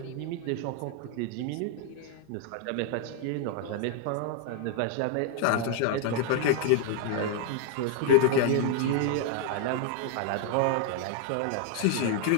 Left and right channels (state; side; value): different; both; correlation 0.00